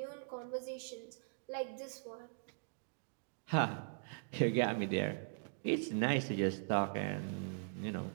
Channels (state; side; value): silent; left; digital silence